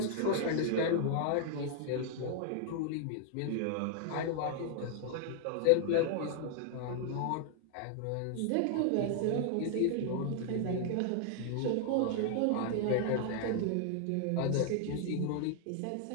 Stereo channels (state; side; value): different; both; correlation 0.00